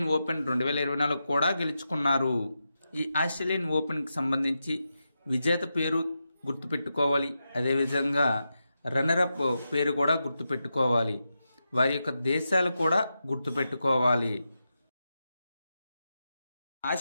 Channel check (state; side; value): inverted; both; correlation -0.88